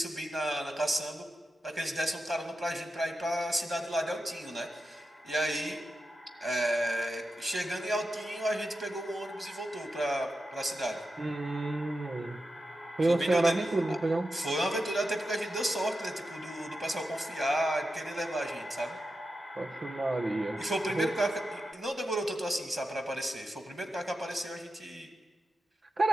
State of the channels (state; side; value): normal; both; correlation 0.90